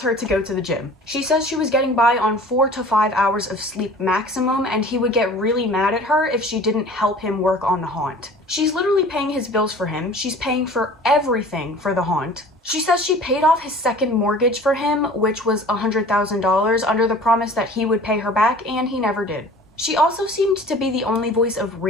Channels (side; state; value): both; normal; correlation 0.45